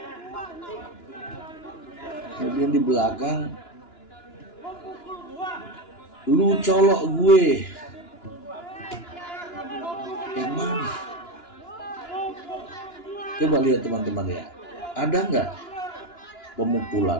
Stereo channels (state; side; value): late; right; 2.9 ms